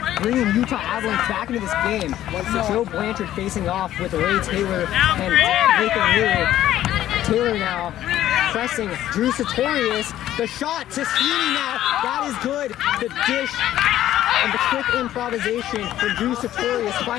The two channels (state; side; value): quieter; right; 12.8 dB